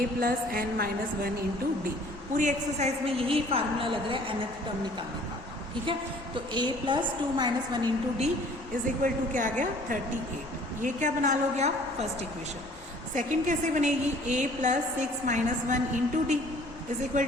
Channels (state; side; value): normal; both; correlation 0.54